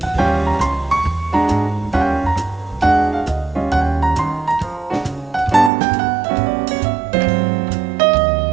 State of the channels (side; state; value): left; drops out; at 5.7 s